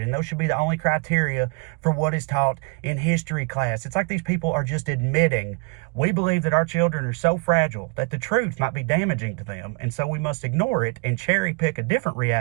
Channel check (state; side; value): quieter; left; 32.2 dB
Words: And those should be the only criteria for what is taught in history class. It's like these people are just admitting, we believe that our children are so fragile that the truth might be damaging to them, and so we must ignore it and cherry pick a different